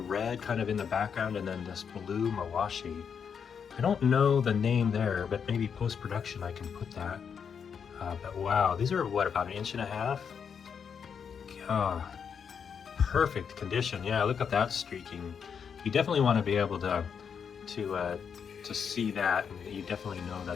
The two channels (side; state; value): right; quieter; 6.9 dB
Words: kind of in the background, and then this blue mawashi. I don't know the name there, but maybe post-production I can put that. But wow, these are what, about 1.5 inches? Perfect condition. Yeah, look at that streaking. You definitely want to be able to see that, and you definitely know